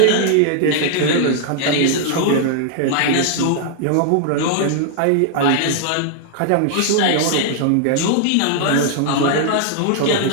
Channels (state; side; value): different; both; correlation -0.01